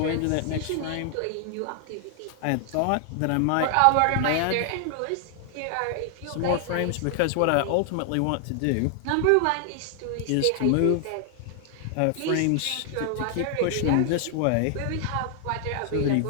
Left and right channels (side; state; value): both; different; correlation 0.00